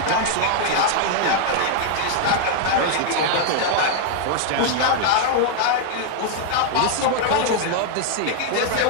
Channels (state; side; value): different; both; correlation 0.00